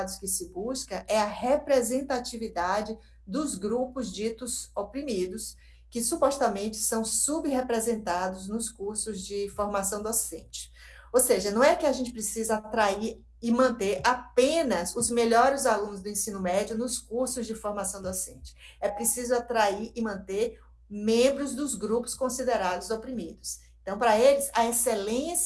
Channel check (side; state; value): both; identical; correlation 1.00